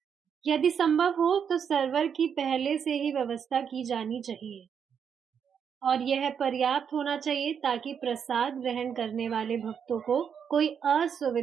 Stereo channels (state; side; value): quieter; left; 7.4 dB